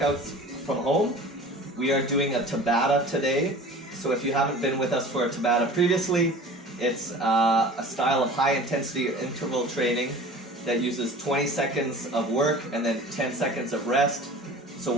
from home. We are doing a Tabata today. So if you haven't been with us for a Tabata previously, it's a style of high intensity interval training that uses 20 seconds of work and then 10 seconds of rest. So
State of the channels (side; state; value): both; normal; correlation 0.41